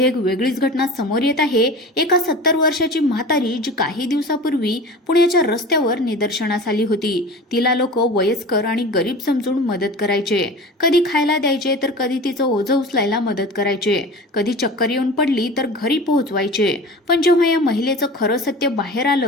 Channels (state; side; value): normal; both; correlation 0.35